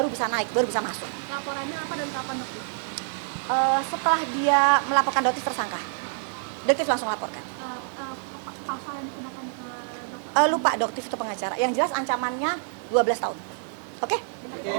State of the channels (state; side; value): silent; left; 60 dB below the other